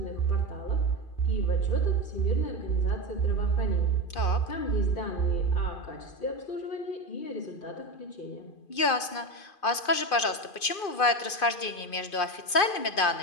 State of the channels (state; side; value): late; right; 2.5 ms